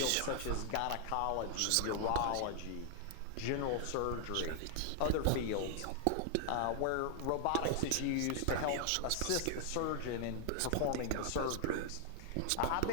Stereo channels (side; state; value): both; different; correlation 0.00